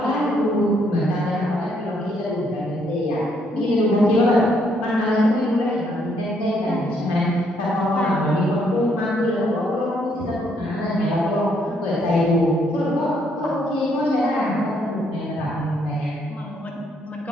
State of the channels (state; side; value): normal; both; correlation 0.71